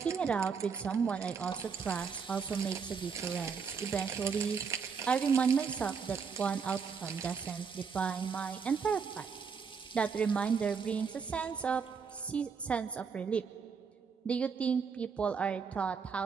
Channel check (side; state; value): left; quieter; 5.9 dB